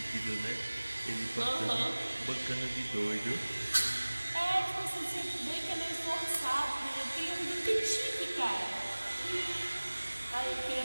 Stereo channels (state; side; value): inverted; both; correlation -1.00